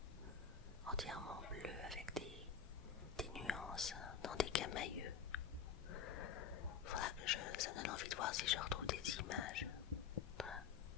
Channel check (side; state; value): right; quieter; 7.0 dB